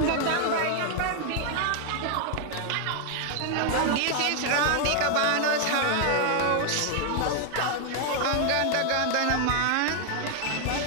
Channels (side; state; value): both; different; correlation 0.00